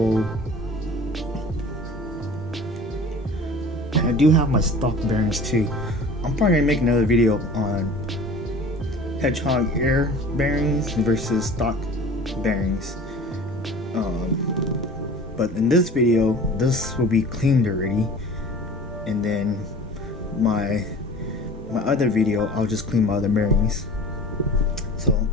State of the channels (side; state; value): both; normal; correlation 0.43